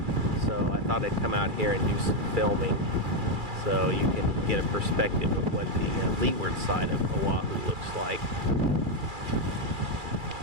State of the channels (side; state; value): left; late; 2.4 ms